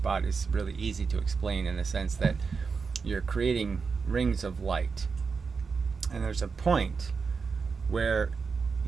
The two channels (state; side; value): quieter; left; 5.1 dB